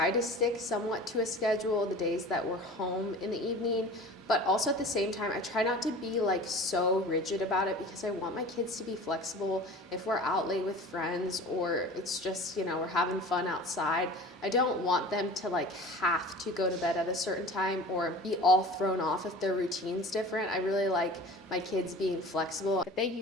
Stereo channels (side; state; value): both; normal; correlation 0.40